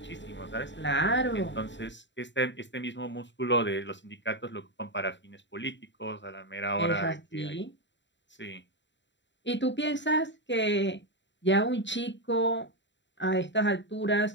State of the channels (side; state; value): right; late; 0.53 ms